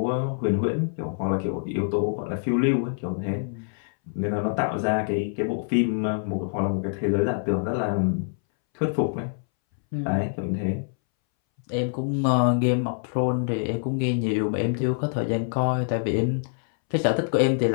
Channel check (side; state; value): right; silent; 61 dB below the other